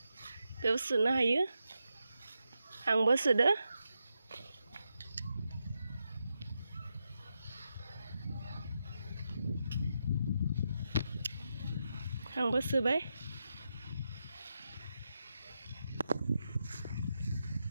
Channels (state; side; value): inverted; both; correlation -0.86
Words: बेयाव सोनो हायो आंबो सोदो आंबो सोबाय